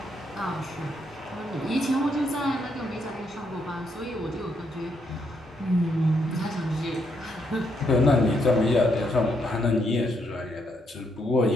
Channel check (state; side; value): normal; both; correlation 0.76